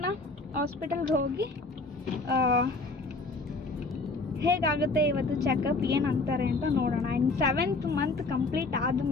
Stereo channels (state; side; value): quieter; right; 3.4 dB